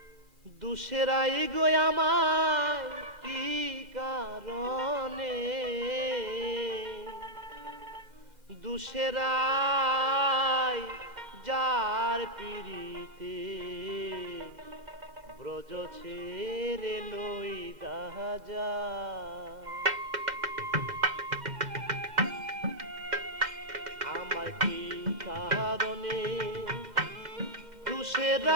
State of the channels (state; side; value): late; left; 2.4 ms